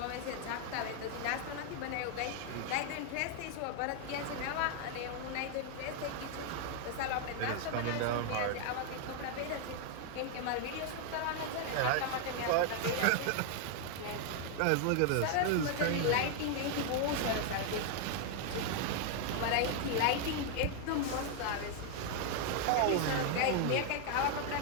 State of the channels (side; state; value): both; different; correlation 0.00